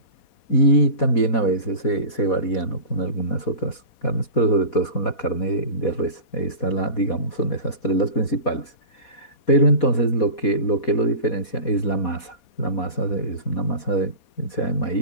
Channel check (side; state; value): right; late; 4.2 ms